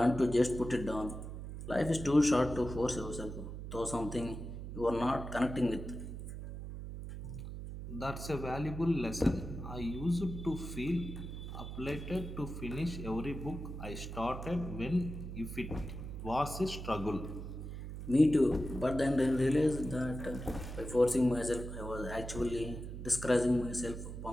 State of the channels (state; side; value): noise; right; hum, 8 dB below the sound